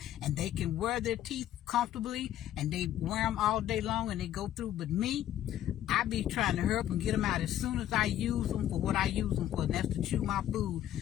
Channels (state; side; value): quieter; right; 12.0 dB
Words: and they can wear their teeth comfortably, and they wear them all day long, and they go through. But me, I be trying to hurry up and get them out. As soon as I use them for what I use them for, and that's to chew my food,